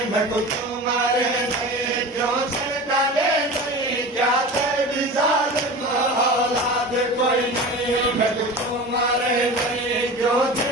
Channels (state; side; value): normal; both; correlation 0.33